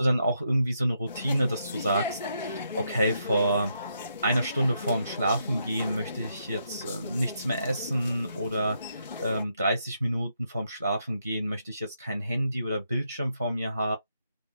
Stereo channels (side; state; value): both; inverted; correlation -0.79